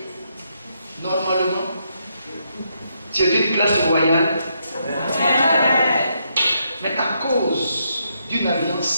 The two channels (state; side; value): inverted; both; correlation -0.78